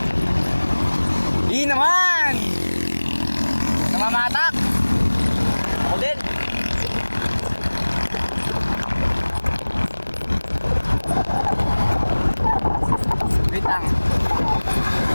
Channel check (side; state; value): both; inverted; correlation -1.00